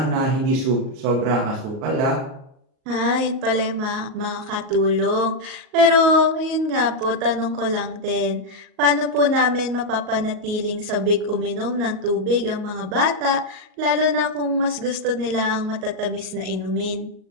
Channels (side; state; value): left; late; 38 ms